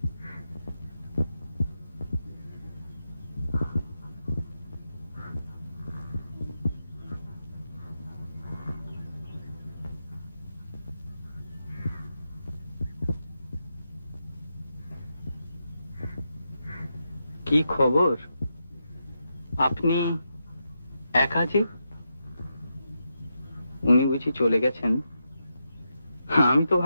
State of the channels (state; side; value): inverted; both; correlation -0.85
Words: কি খবর? আপনি একা যে? উনি বুঝি চলে গেছেন? আমি তো